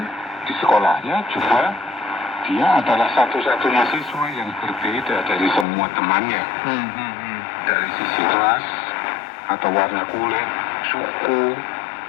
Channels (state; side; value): drops out; right; at 5.7 s